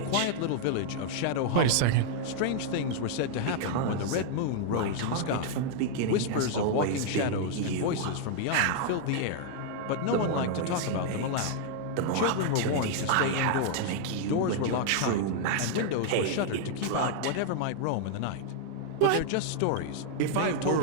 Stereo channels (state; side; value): different; both; correlation -0.01